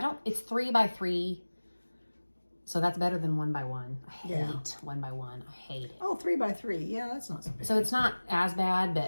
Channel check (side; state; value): both; inverted; correlation -1.00